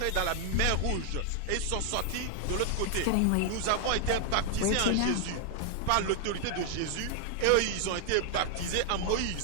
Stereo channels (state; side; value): different; both; correlation 0.00